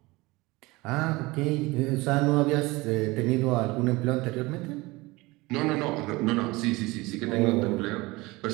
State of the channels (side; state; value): left; quieter; 22.3 dB